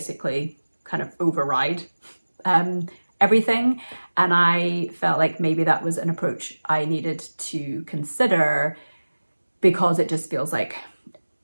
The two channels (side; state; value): both; inverted; correlation -1.00